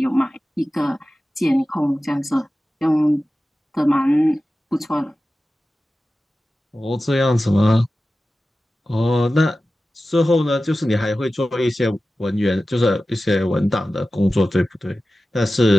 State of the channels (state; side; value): normal; both; correlation 0.95